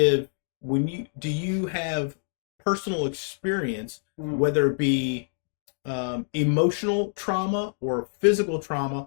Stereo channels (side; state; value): right; silent; digital silence